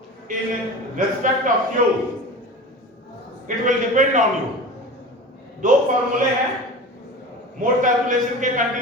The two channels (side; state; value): both; normal; correlation 0.34